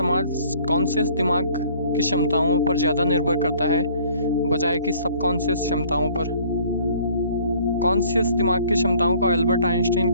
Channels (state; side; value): inverted; both; correlation -0.56